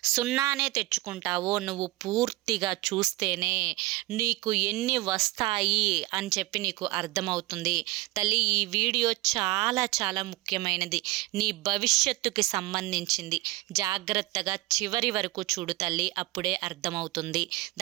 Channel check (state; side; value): quieter; left; 19.8 dB